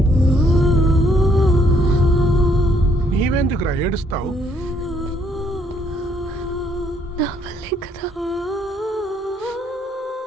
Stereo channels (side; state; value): both; normal; correlation 0.67